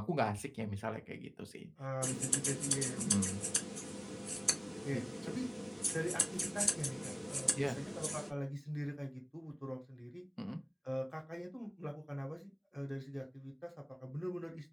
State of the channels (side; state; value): both; identical; correlation 1.00